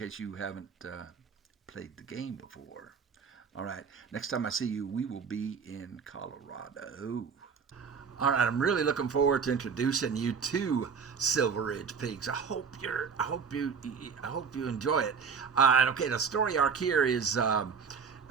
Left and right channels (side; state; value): left; quieter; 6.0 dB